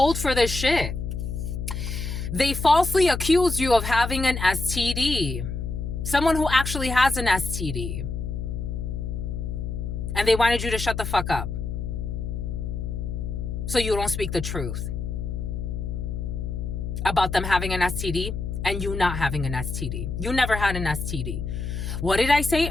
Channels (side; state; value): left; noise; hum, 4 dB below the sound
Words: for this shit. They falsely accused you of having an STD. Someone who actually has an STD. And they wanted you to shut the fuck up, so you don't speak the truth about them having an STD and you not having an STD. You never had an STD. What did I say